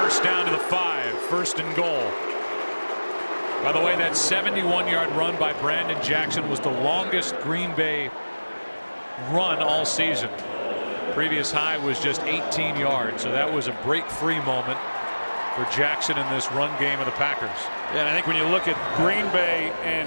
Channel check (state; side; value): inverted; both; correlation -1.00